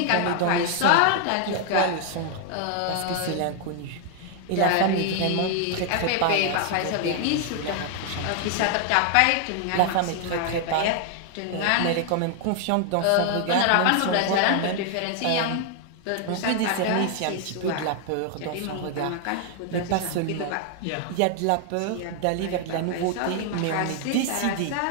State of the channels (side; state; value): both; different; correlation 0.00